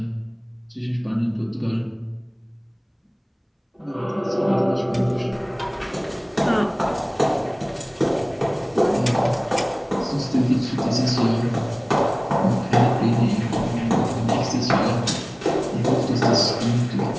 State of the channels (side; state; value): both; identical; correlation 1.00